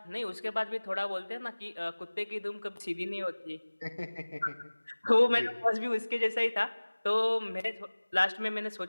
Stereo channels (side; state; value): both; inverted; correlation -1.00